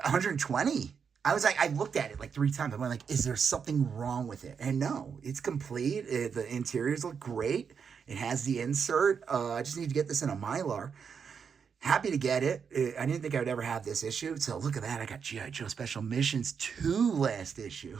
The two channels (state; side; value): quieter; left; 6.5 dB